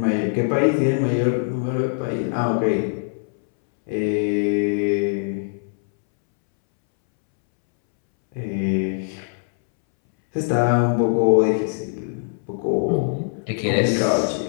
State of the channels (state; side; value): silent; right; 64 dB below the other